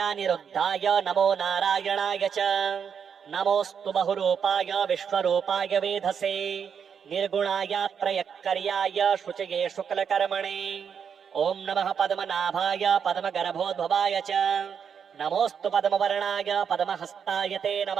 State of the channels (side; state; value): left; quieter; 7.2 dB